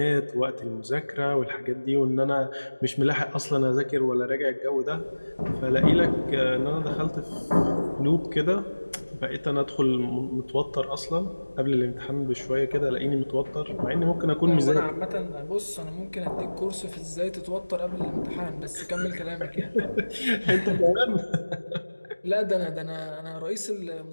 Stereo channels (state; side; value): inverted; both; correlation -1.00